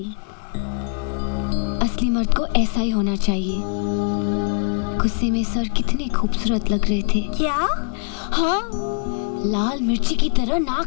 असली मर्द को ऐसा ही होना चाहिए। गुस्से में सर कितने खूबसूरत लग रहे थे। क्या? हाँ, लाल मिर्ची की तरह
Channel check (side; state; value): right; silent; digital silence